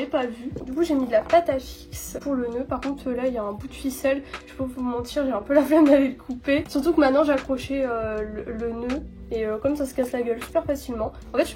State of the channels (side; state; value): both; identical; correlation 1.00